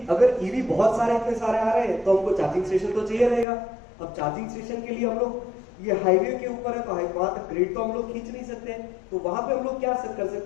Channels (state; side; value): drops out; right; at 3.5 s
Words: अगर ईवी बहुत सारे इतने सारे आ रहे हैं तो हमको चार्जिंग स्टेशन तो चाहिए रहेगा। अब चार्जिंग स्टेशन के लिए हम लोग, ये हाईवे के ऊपर है तो वहां तक ग्रिड तो हम लोग खींच नहीं सकते, तो वहां पे हम लोग क्या कर